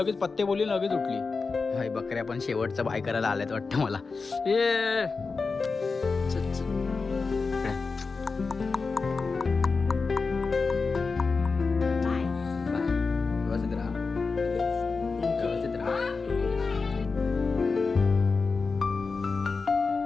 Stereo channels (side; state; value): right; quieter; 4.4 dB